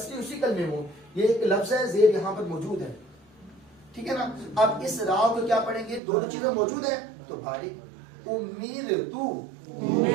اسی کلمے میں ہو. یہ ایک لفظ ہے، زیر یہاں پر موجود ہے. ٹھیک ہے نا. اب اس را کو کیا پڑھیں گے؟ دونوں چیزیں موجود ہیں تو باریک. امیر تو،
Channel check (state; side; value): drops out; left; at 6.0 s